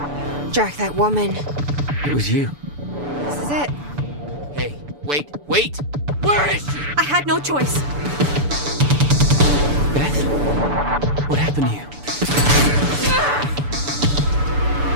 Jack, that woman. It was you. This is it. Hey, wait! Where is she? I had no choice. Beth? What happened to you?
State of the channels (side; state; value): left; late; 6.9 ms